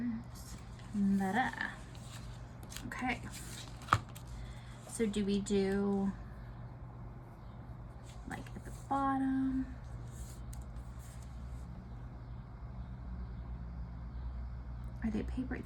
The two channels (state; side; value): identical; both; correlation 1.00